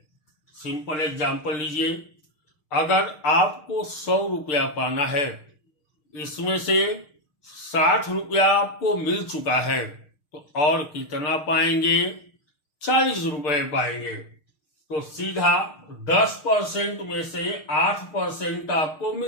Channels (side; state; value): right; late; 6.5 ms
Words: सिंपल एग्जांपल लीजिए। अगर आपको 100 रुपया पाना है, इसमें से 60 रुपया आपको मिल चुका है, तो और कितना पाएंगे? 40 रुपए पाएंगे। तो सीधा 10% में से 8% आपको